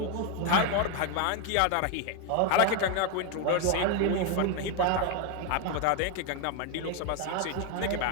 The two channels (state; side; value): different; both; correlation 0.01